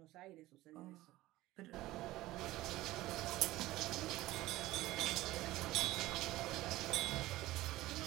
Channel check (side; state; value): left; quieter; 17.3 dB